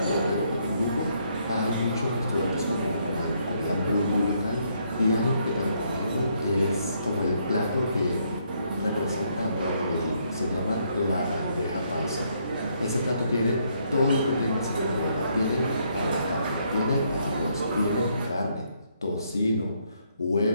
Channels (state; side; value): inverted; both; correlation -0.72